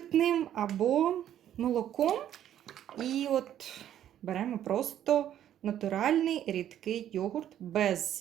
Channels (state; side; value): quieter; left; 11.0 dB